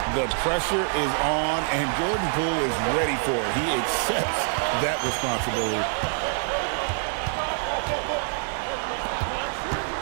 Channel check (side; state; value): left; silent; 56 dB below the other